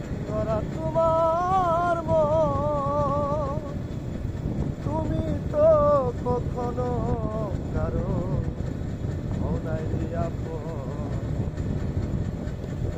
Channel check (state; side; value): identical; both; correlation 1.00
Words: করা তোমার মন, তুমি তো কখনো কারো মনাই আপন।